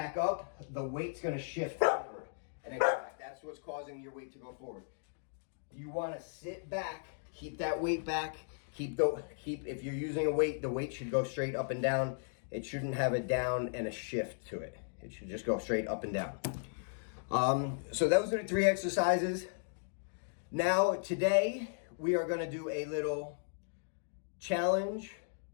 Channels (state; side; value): silent; right; digital silence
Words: up, the weight's going to shift forward and then go back. That's what's causing your weight to go forward. You want to sit back, keep that weight back. If you're using a weight, the weight should go straight up and down. It shouldn't have a down and a shift to it. It should just go straight up and down. So those are the 3 exercises. Now today we are going to do a little challenge